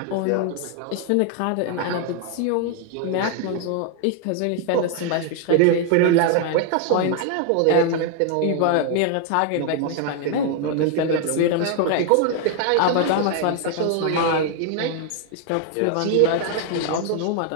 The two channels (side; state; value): both; different; correlation 0.00